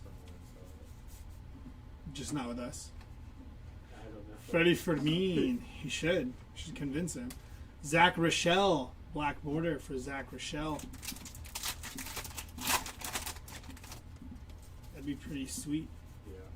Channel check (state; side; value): identical; both; correlation 1.00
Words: Just not with us. I don't know. Freddie Fermin. He should. Should convince him. Zach Rochelle. Black border for Zach Rochelle. That'd be pretty sweet. Yeah.